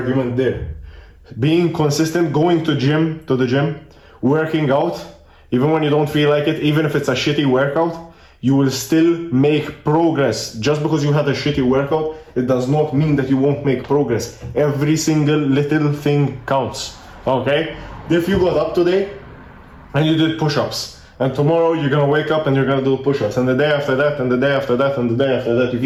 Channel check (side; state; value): both; identical; correlation 1.00